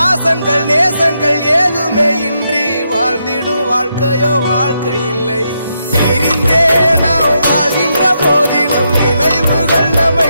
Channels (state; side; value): inverted; both; correlation -0.81